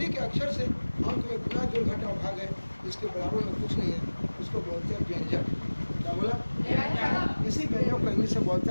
के अक्षर से अंक में गुना जोड़ घटाव भाग है, इसके बराबर में कुछ नहीं है, उसको बोलते हैं व्यंजक। क्या बोला? इसी व्यंजक को इंग्लिश में बोलते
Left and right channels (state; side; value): inverted; both; correlation -1.00